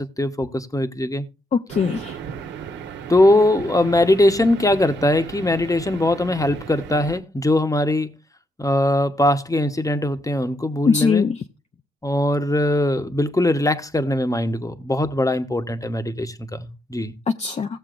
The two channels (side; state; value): both; normal; correlation 0.79